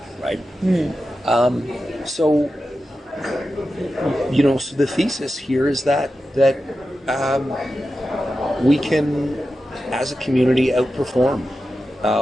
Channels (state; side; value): normal; both; correlation 0.92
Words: right? So the thesis here is that we can, as a community, outperform